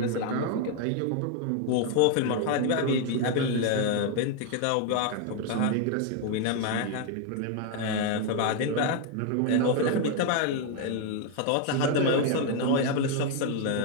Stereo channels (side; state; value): both; different; correlation 0.01